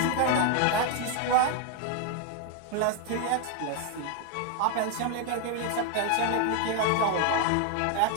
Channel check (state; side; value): different; both; correlation 0.01